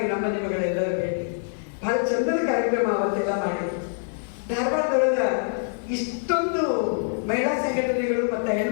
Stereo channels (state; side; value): silent; right; 56 dB below the other